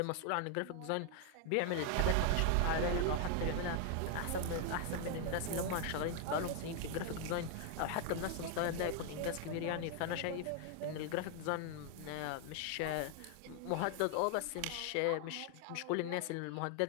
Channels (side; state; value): both; different; correlation 0.00